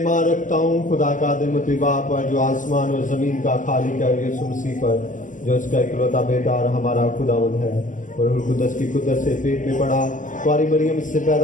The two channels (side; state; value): right; late; 0.37 ms